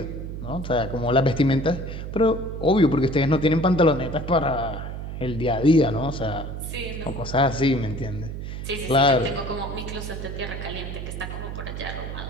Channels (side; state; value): right; noise; hum, 7 dB below the sound